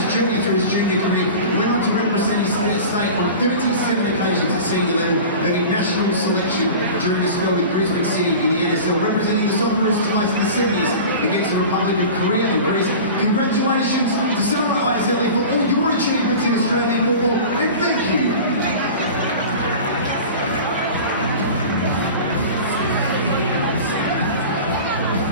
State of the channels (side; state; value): both; inverted; correlation -0.36